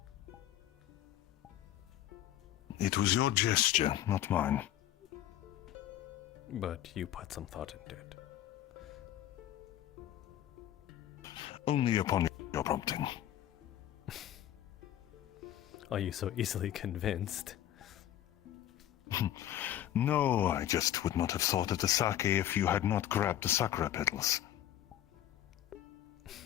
It was your gesture, not mine. But you put some thought into it. Only upon your prompting. Are you so easily convinced? No, I just would not have thought of the sake if you had not grabbed the sakura petals.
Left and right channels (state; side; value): quieter; right; 12.2 dB